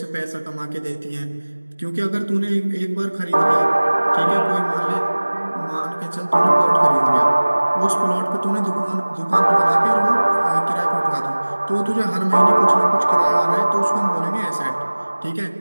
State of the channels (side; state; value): both; inverted; correlation -1.00